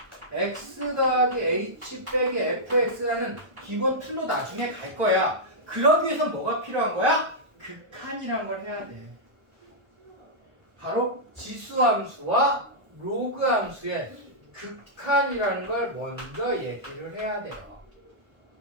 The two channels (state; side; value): late; left; 1.0 ms